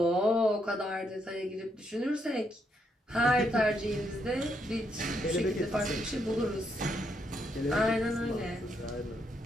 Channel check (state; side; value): normal; both; correlation 0.77